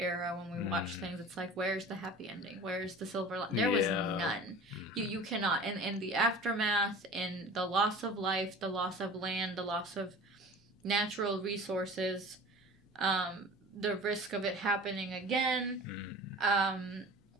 when we watch things, it's like, where's the happy ending? Where's the silver lining? There was none. You cannot. In the aftermath, in the loss of life, the loss of land, the loss of natural resources, the risk of it happening again,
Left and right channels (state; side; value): normal; both; correlation 0.40